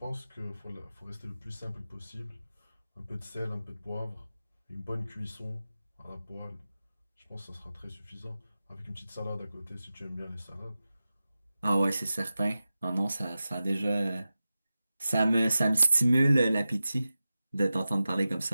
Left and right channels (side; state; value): both; inverted; correlation -0.94